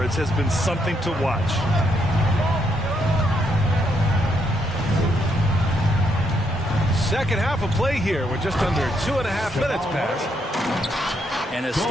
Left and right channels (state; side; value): normal; both; correlation 0.76